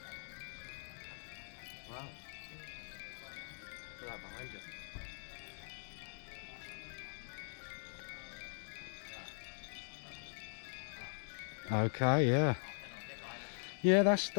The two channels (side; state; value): right; silent; digital silence